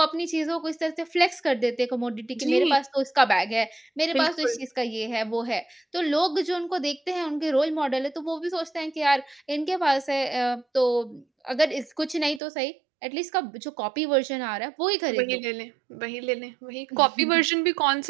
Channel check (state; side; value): drops out; left; at 12.4 s